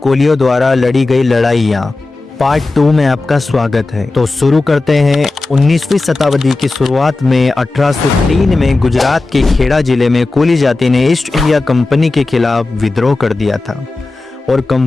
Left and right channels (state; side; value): quieter; right; 3.3 dB